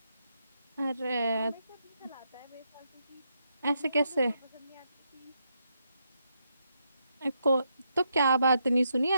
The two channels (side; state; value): both; inverted; correlation -0.80